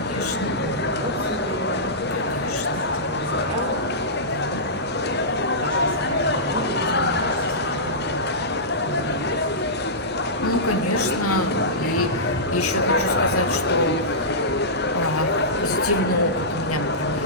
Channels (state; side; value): normal; both; correlation -0.16